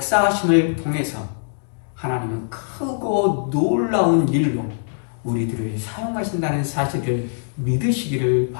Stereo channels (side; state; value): right; silent; digital silence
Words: 통해서 하나님은 크고 놀라운 일로 우리들을 사용하신다는 사실을 믿으시기를